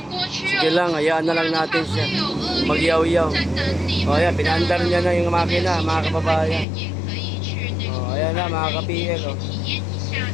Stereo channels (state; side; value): drops out; right; at 6.7 s